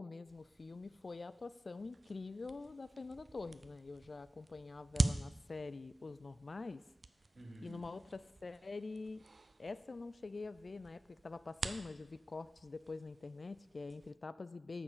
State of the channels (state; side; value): normal; both; correlation 0.94